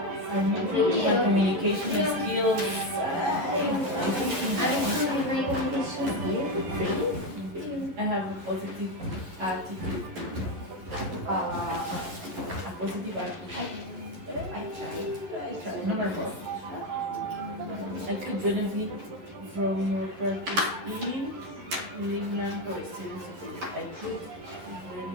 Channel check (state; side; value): late; left; 11 ms